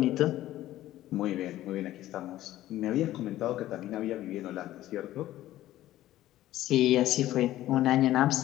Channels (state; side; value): quieter; right; 14.4 dB